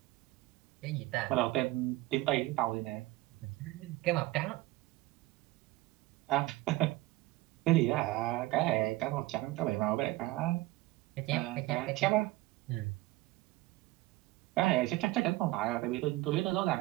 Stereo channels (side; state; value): left; quieter; 18.5 dB